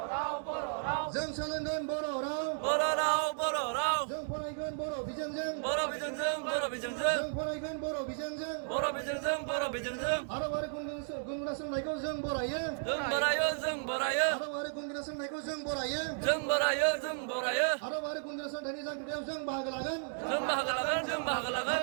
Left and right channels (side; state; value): left; silent; digital silence